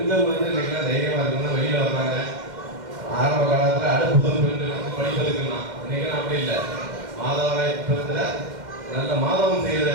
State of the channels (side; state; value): left; late; 2.1 ms